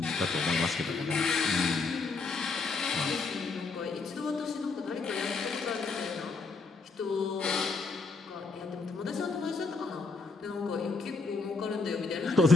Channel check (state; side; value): quieter; right; 4.0 dB